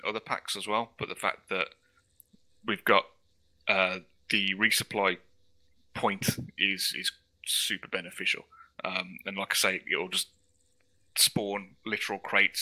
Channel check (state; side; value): identical; both; correlation 1.00